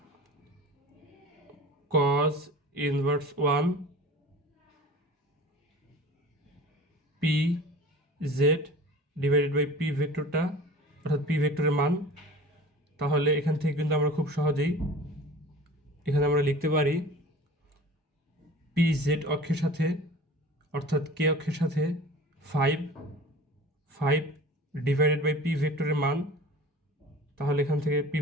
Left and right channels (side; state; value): both; normal; correlation 0.41